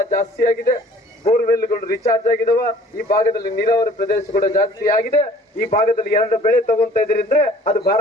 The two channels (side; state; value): both; normal; correlation 0.52